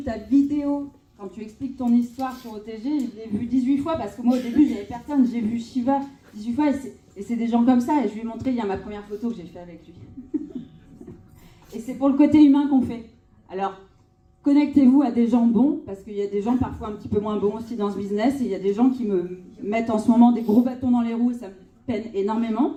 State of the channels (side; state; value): both; identical; correlation 1.00